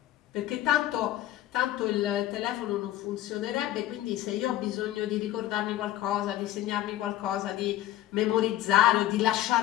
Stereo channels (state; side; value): quieter; right; 13.9 dB